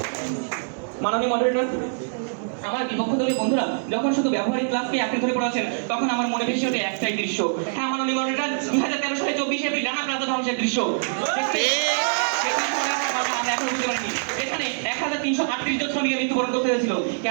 মাননীয় মডারেটর, আমার বিপক্ষ দলীয় বন্ধুরা যখন শুধু ব্যবহারিক ক্লাসকে আঁকড়ে ধরে পড়াচ্ছেন, তখন আমার মনে ভেসে ওঠে একটাই দৃশ্য। হ্যাঁ মাননীয় মডারেটর, 2013 সালে 24 এপ্রিল রানা প্লাজা ধ্বংসের দৃশ্য। আমরা এখন বুঝতে পারিনি, এখানে 1338 জন শ্রমিকের মৃত্যুবরণ করতে হয়েছিল।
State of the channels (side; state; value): left; silent; 62 dB below the other